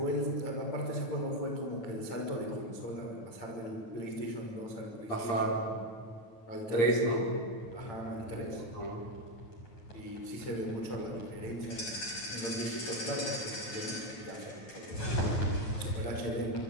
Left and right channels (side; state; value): right; late; 9.2 ms